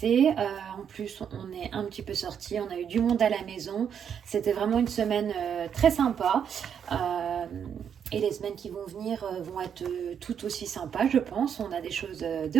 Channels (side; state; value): left; quieter; 8.0 dB